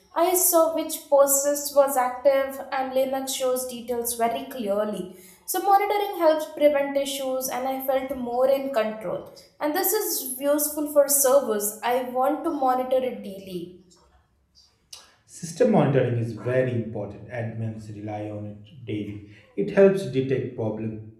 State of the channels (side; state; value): both; identical; correlation 1.00